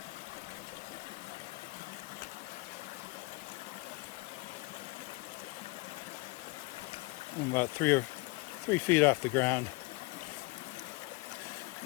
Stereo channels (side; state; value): right; quieter; 24.5 dB